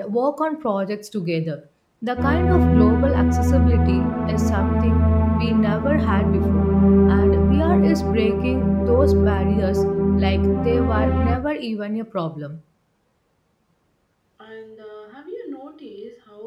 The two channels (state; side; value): identical; both; correlation 1.00